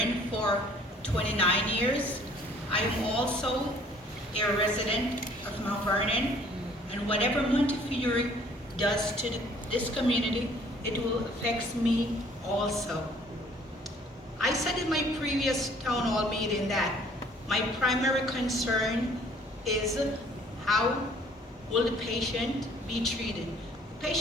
for 29 years. I am also a resident of Mount Vernon, and whatever Montefiore does to this community, it will affect me also. I said in my previous town hall meeting that my primary concern is how will the patient be treated. The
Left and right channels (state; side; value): normal; both; correlation 0.57